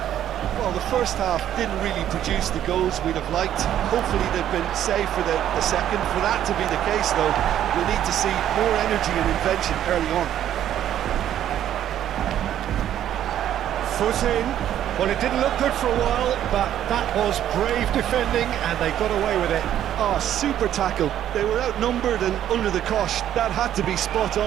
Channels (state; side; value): quieter; left; 11.1 dB